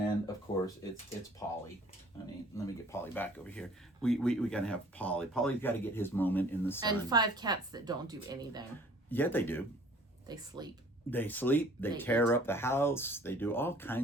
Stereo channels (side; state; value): both; normal; correlation 0.53